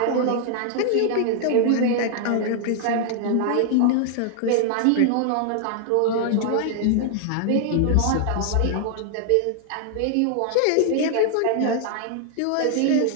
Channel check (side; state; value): both; different; correlation 0.00